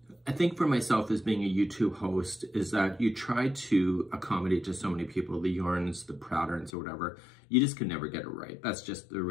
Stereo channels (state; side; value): drops out; right; at 6.7 s